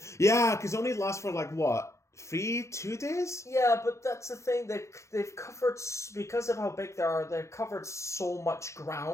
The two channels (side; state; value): right; late; 0.14 ms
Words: Yeah, because it only lasts for, like, what? 2 days? Yeah, but that's the thing. They've covered, because of how big they are, they've covered so much